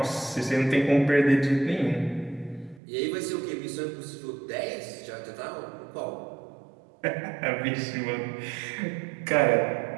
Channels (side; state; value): left; drops out; at 2.8 s